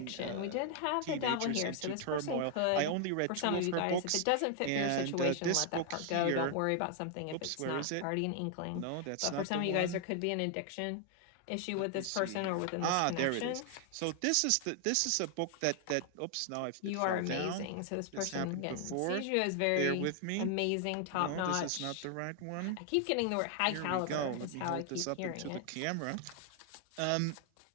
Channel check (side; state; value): both; different; correlation 0.00